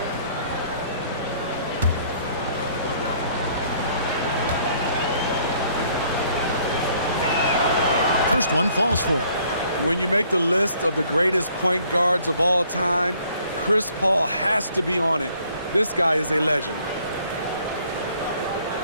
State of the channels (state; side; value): inverted; both; correlation -0.61